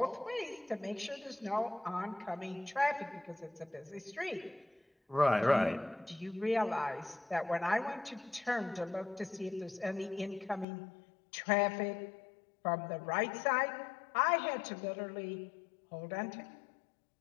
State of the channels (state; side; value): drops out; right; at 10.7 s